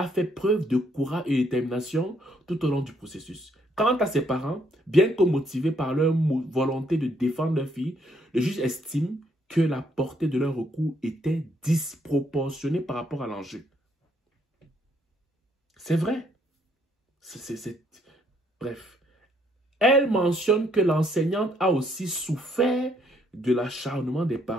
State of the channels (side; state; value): both; normal; correlation 0.70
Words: fait preuve de courage et de détermination tout au long du processus. Quant à ses parents, bien que motivés par leur volonté de défendre leur fille, le juge estime que la portée de leur recours était disproportionnée par rapport à l'enjeu. C'est vrai. Bref. Elle mentionne que l'enseignante a aussi souffert de l'acharnement des